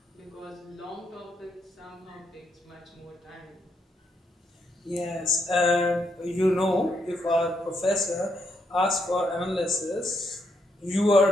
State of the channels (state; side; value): normal; both; correlation 0.78